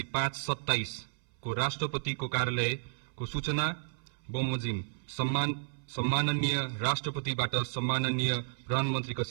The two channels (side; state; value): left; silent; 56 dB below the other